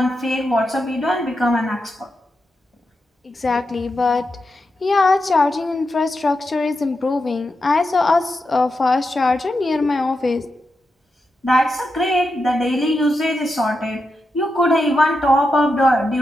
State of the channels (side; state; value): both; normal; correlation 0.87